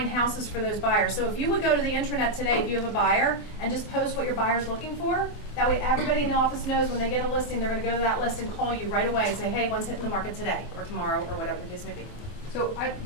houses for those buyers. So if you would go to the intranet today, if you have a buyer, and just post what your buyer's looking for, that way everybody in the office knows when they get a listing, they're going to go to that list and call you right away and say, hey, one's hitting the market today or tomorrow or whatever the case may be. So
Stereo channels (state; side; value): late; right; 24 ms